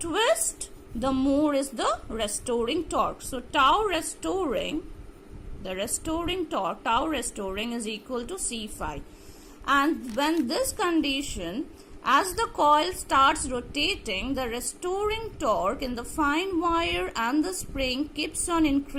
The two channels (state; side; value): identical; both; correlation 1.00